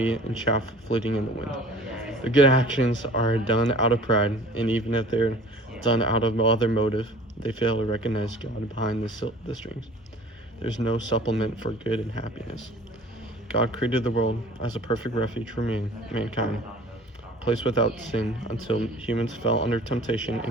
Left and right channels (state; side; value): normal; both; correlation 0.47